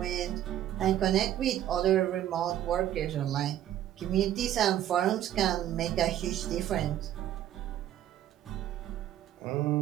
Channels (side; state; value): left; quieter; 11.9 dB